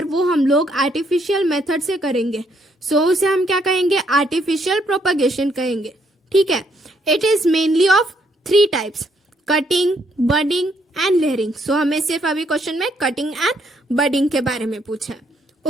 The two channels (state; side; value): normal; both; correlation 0.71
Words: वो हम लोग आर्टिफिशियल मेथड से करेंगे सो उसे हम क्या कहेंगे, आर्टिफिशियल प्रोपगेशन कहेंगे. ठीक है, it is mainly of 3 types, cutting, budding and layering. So हमें सिर्फ अभी क्वेश्चन में कटिंग एंड बडिंग के बारे में पूछा है.